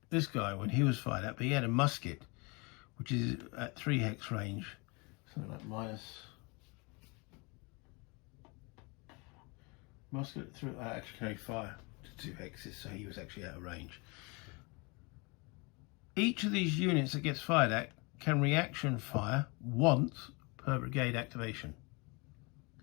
this guy, when he was fired at, but he had a musket which is at 3 hex range, something like musket through actually carry fire to 2 hexes, so he was actually out of range. Each of these units that gets fired at can reaction fire once per brigade activation.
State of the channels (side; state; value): right; quieter; 29.1 dB